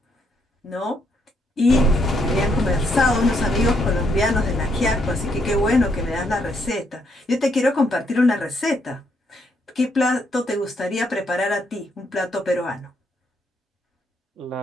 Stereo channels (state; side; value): normal; both; correlation 0.74